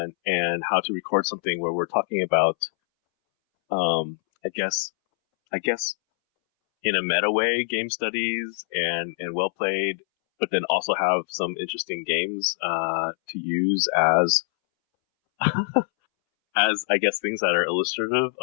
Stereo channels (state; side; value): silent; right; 62 dB below the other